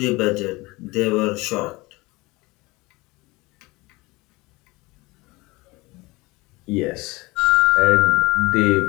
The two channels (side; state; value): right; quieter; 22.5 dB